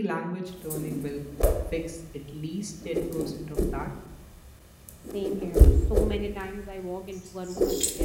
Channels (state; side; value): identical; both; correlation 1.00